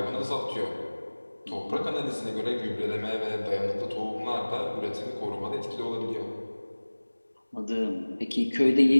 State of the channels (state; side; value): inverted; both; correlation -1.00